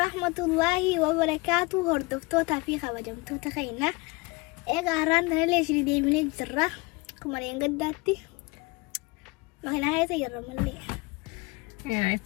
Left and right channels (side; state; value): right; quieter; 25.8 dB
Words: الله وبركاته. هردفتوتا في خبجمتوتا خينا إيجا هران ليش دي من الجرة كما ينقداتي ما هنا هاي سيرة ملي يا